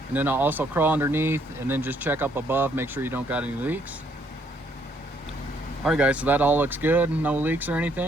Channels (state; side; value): normal; both; correlation 0.69